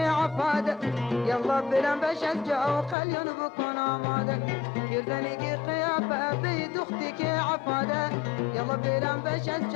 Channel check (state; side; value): drops out; right; at 3.0 s